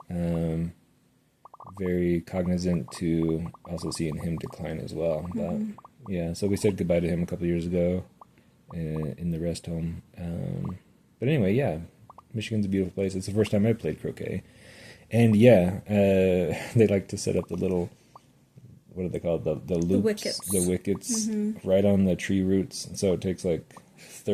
very cognizant to also seeing him decline as well. But yeah, so we said goodbye to him a couple years ago in the rest home. But anyway, yeah, Michigan's a beautiful place. It's the first time I played croquet. And yeah, they like to set up the little, what are they called? The loops? The wickets right on the tree roots. And so it takes like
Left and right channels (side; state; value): both; identical; correlation 1.00